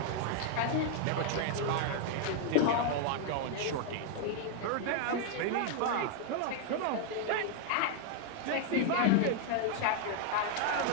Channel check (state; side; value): different; both; correlation 0.00